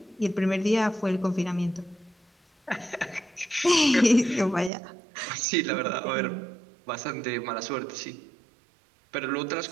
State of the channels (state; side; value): drops out; left; at 4.7 s